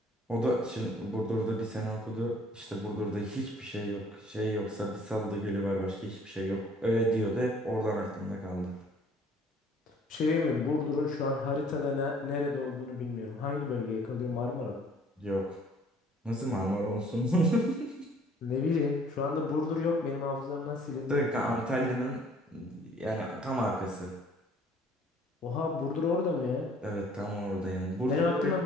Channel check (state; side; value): normal; both; correlation 0.56